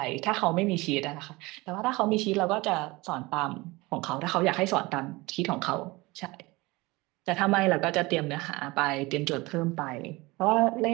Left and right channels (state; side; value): quieter; left; 22.4 dB